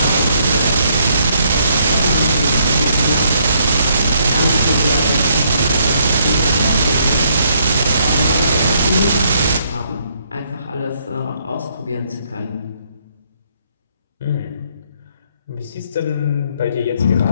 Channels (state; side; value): inverted; both; correlation -0.70